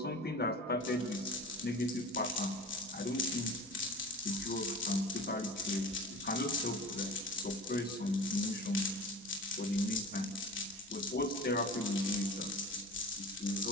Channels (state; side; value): normal; both; correlation 0.36